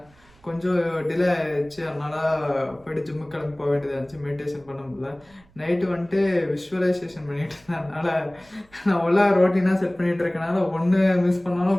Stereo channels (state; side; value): noise; right; rumble, 29 dB below the sound